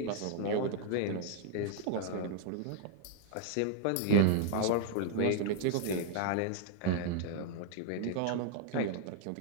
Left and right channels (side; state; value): both; different; correlation 0.00